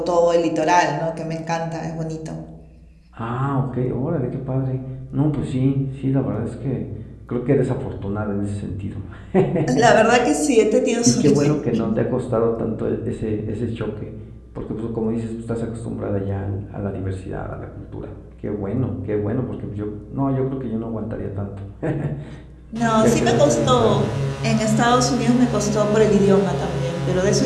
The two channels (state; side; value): identical; both; correlation 1.00